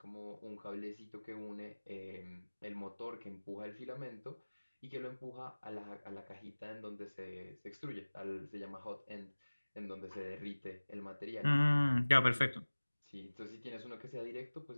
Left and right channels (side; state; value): both; inverted; correlation -1.00